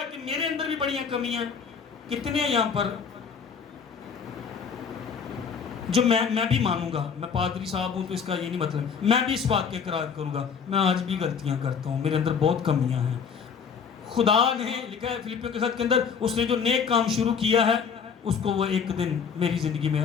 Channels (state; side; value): quieter; right; 6.5 dB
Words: کہ میرے اندر بھی بڑی کمیاں. کتنے ہیں یہاں پر جو میں بھی مانوں گا، میں پادری صاحب ہوں تو اس کا یہ نہیں مطلب، میں بھی اس بات کے اقرار کروں گا میں آج بھی غلطیاں کرتا ہوں، میرے اندر بہت کمیاں ہیں. خدا نے لکھا ہے فلیپیوں کے خط کے اندر، اس نے جو نیک کام شروع کیا ہے اس کو وہ ایک دن میری زندگی میں،